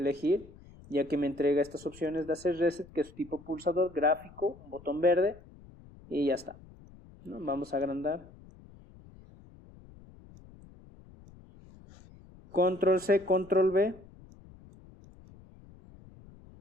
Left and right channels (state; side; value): noise; left; rumble, 22 dB below the sound